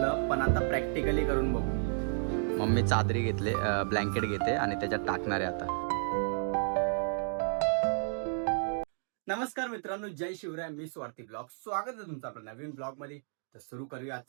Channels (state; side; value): silent; left; 56 dB below the other